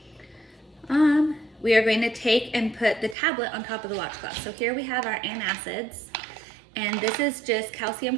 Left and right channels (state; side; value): drops out; left; at 3.2 s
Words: take and put the tablet on top of the watch glass. So here we have our antacids, and this is just